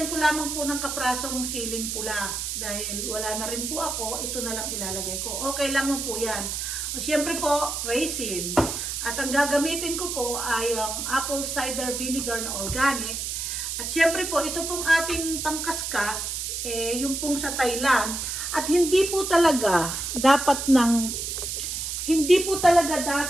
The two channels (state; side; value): noise; right; hiss, 3 dB below the sound